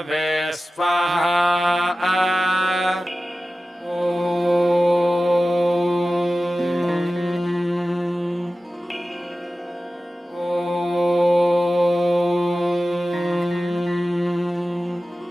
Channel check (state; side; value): normal; both; correlation 0.95